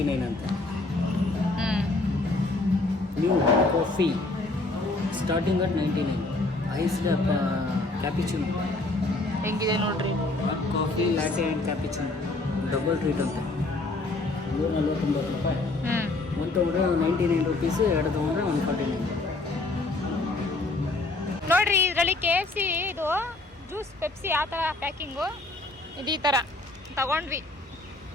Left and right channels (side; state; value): right; quieter; 3.1 dB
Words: ಅಂತ. New coffee starting at 99. Iced cappuccino ಹೆಂಗಿದೆ ನೋಡ್ರಿ. Coffee latte and cappuccino double treat ಅಂತ. 149 ರೂಪಾಯಿ. ಒಂದು ತೊಗೊಂಡ್ರೆ 99 ರೂಪೀಸು, ಎರಡು ತೊಗೊಂಡ್ರೆ 149. ನೋಡ್ರಿ ಇದರಲ್ಲಿ KFC ಇದು ಜ್ಯೂಸ್ ಪೆಪ್ಸಿ ಆ ಥರ ಪ್ಯಾಕಿಂಗು ಇದು ಈ ಥರ ತಗೊಂಡ್ವಿ.